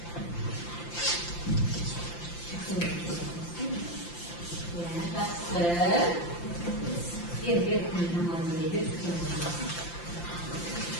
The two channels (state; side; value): late; right; 5.8 ms